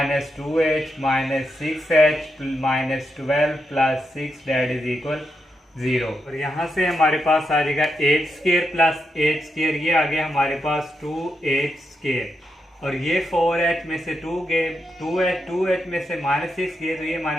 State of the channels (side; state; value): both; normal; correlation 0.84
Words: two H minus six H minus 12 plus six, that is equal zero. और यहाँ से हमारे पास आ जाएगा H square plus H square, ये आ गया हमारे पास टू एच स्केयर, और ये फोर एच में से टू गए, टू एच में से माइनस सिक्स गए, तो ये